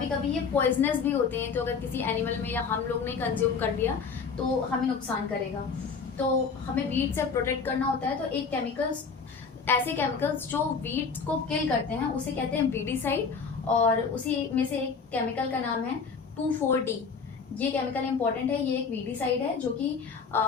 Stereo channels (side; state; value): right; quieter; 5.4 dB